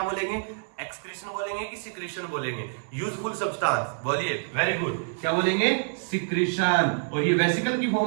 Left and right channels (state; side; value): silent; left; 58 dB below the other